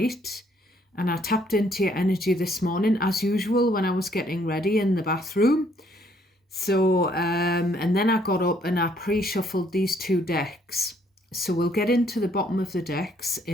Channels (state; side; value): normal; both; correlation 0.66